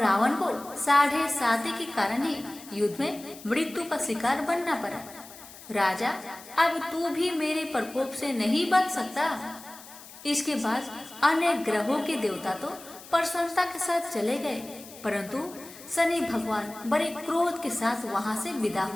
को 7.5 के कारण ही युद्ध में मृत्यु का शिकार बनना पड़ा। राजा, अब तू भी मेरे प्रकोप से नहीं बच सकता। इसके बाद अन्य ग्रहों के देवता तो प्रसन्नता के साथ चले गए, परंतु शनि भगवान बड़े क्रोध के साथ वहां से विदा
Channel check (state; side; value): noise; left; hiss, 18 dB below the sound